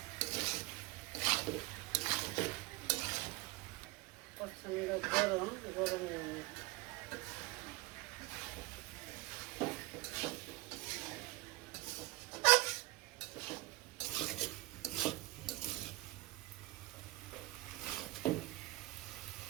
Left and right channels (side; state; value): left; quieter; 21.6 dB